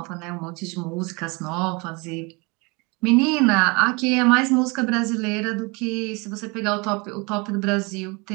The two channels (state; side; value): quieter; left; 28.1 dB